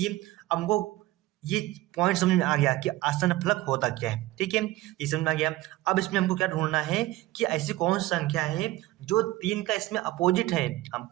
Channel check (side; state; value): left; quieter; 17.4 dB